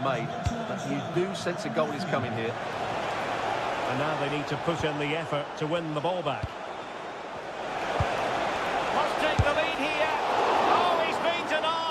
made. But you do sense a goal is coming here. And now they need to put in the effort to win the ball back. Must take the lead here. Oh, he's been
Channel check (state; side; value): identical; both; correlation 1.00